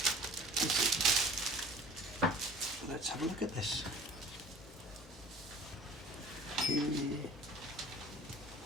Let's have a look at this. Okay.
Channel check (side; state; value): both; normal; correlation 0.46